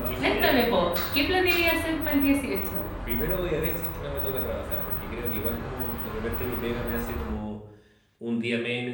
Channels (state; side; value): identical; both; correlation 1.00